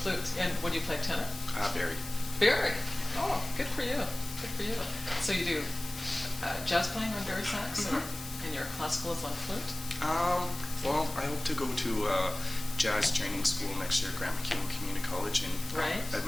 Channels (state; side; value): noise; left; hiss, 12 dB below the sound